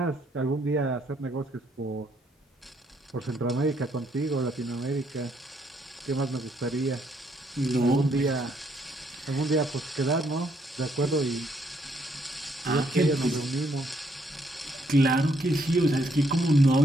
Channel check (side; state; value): both; normal; correlation 0.71